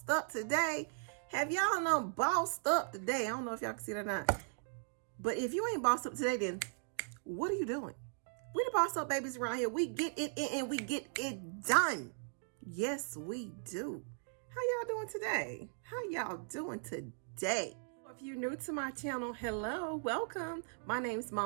up today? Have y'all done bossed up today? I don't know if y'all can see that or not. But if you ain't bossed up today, then what are you doing? We the boss up babies around here. We get it in and we get it done. Yes, we do. How y'all doing today? How y'all doing today? If you're new to my channel, hello, welcome. My name is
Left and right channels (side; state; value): left; silent; digital silence